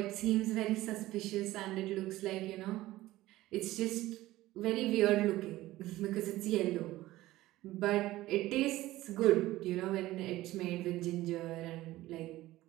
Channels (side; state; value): left; quieter; 16.7 dB